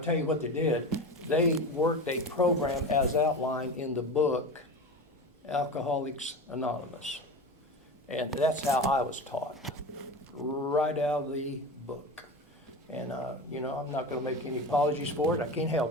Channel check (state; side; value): normal; both; correlation 0.28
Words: tell you what they did. They worked a program as outlined in the book, Alcoholics Anonymous. And that's how I was taught, right out of the book. And, I'm not going to make any apologies for it. I can't